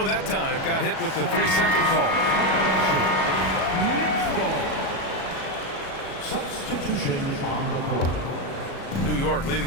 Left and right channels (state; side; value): late; right; 37 ms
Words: that time. Got hit with the 3-second call. Substitution on the court. New York